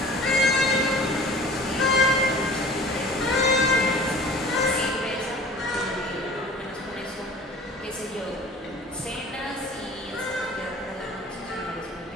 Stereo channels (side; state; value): both; normal; correlation 0.44